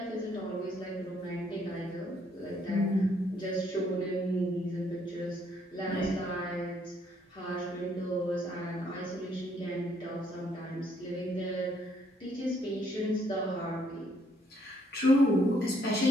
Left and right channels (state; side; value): normal; both; correlation 0.69